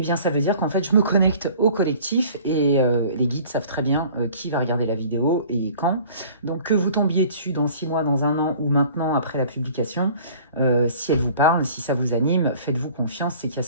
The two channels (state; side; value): inverted; both; correlation -0.48